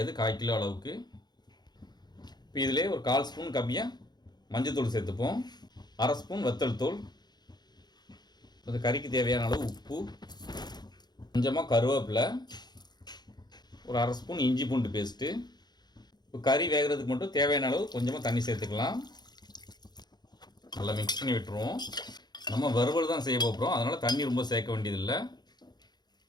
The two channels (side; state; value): right; late; 0.20 ms